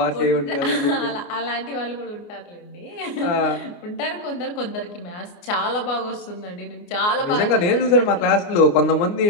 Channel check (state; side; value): late; right; 29 ms